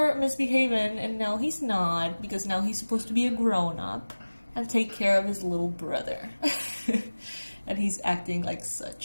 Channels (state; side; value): inverted; both; correlation -1.00